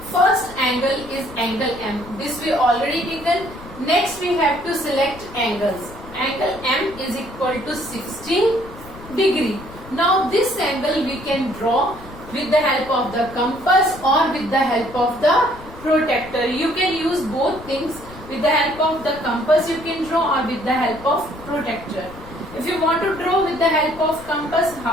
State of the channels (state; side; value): noise; left; rumble, 17 dB below the sound